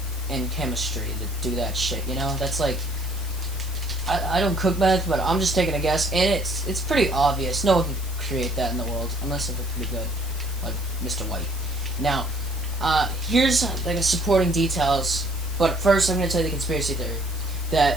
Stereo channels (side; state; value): right; noise; hiss, 17 dB below the sound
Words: and chemistry to do that shit. That's like I don't cook meth, but I'm just taking a guess, and it's pretty obvious. No one can create that in the world unless they're pretty good, like Mr. White. Now, here's like a supporting details, but first I'm going to tell you the conspiracy theory